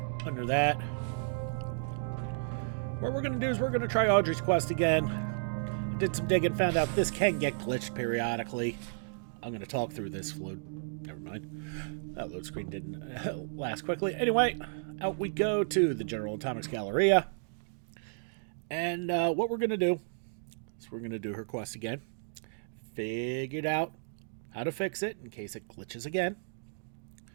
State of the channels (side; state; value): left; silent; digital silence